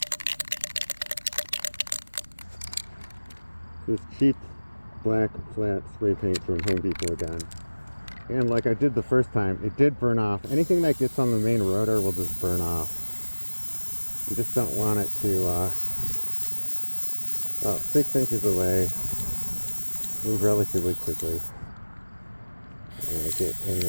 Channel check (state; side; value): inverted; both; correlation -1.00